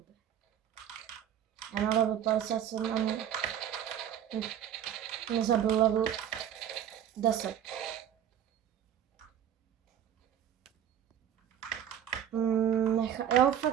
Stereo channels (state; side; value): quieter; left; 10.0 dB